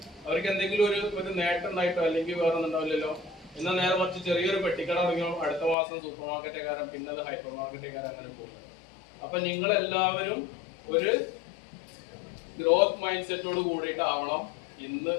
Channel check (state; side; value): drops out; right; at 5.8 s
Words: അവർക്ക് എന്തെങ്കിലും ഒരു നേട്ടം ഉണ്ടായിട്ടോ അല്ലെങ്കിൽ വേറെ ഒന്നും ഉണ്ടാവില്ലല്ലോ. എന്നാൽ നേരെ മറിച്ച് ചെറിയൊരു പെട്ടിക്കട തുടങ്ങിയോ അടുത്ത മാസം സൂപ്പർ മാർക്കറ്റേക്കാരൻ, പിന്നെ അത് ഹൈപ്പർ മാർക്കറ്റേക്കാരൻ, അങ്ങനെ പോകുന്നത്. അപ്പൊ നിങ്ങളെല്ലാവരും ഒരു ഗ്രോത്ത് മൈൻഡ് സെറ്റോട് കൂടിയിട്ടാവണം ഇന്ന്